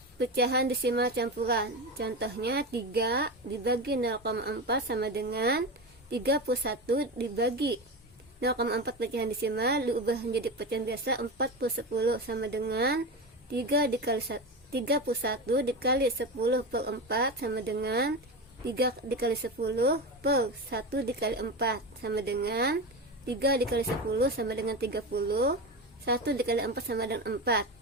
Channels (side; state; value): both; normal; correlation 0.21